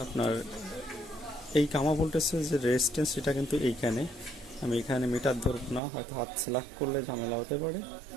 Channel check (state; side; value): drops out; left; at 5.8 s